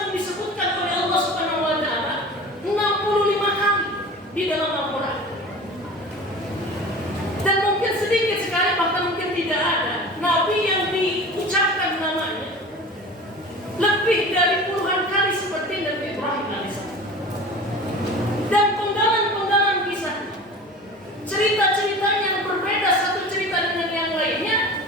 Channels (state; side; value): normal; both; correlation 0.38